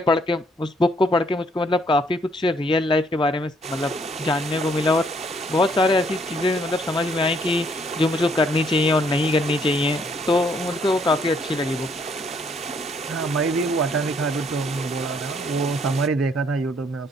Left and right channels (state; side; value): normal; both; correlation 0.67